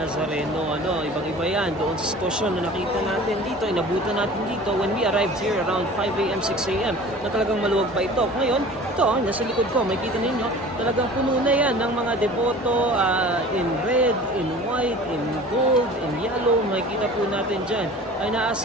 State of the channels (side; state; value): both; normal; correlation 0.42